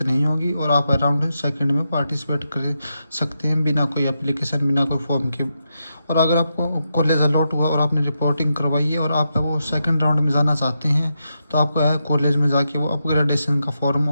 नहीं होगी और आप राउंड सेकंड में पार्टिसिपेट कर सकते हैं बिना कोई एप्लीकेशन, बिना कोई फॉर्म के। और अगर आपको कॉलेज अलॉट हुआ और आपने रिपोर्टिंग करवाई है और आप वो सेकंड राउंड में जाना चाहते हैं तो आपको है कॉलेज में जाके वो अपग्रेडेशन का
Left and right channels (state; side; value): inverted; both; correlation -0.85